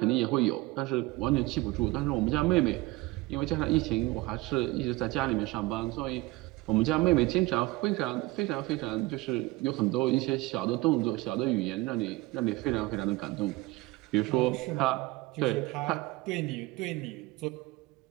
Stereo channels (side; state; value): left; quieter; 20.7 dB